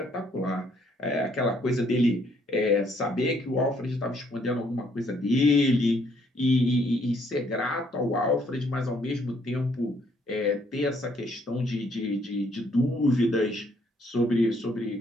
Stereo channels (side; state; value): both; normal; correlation 0.67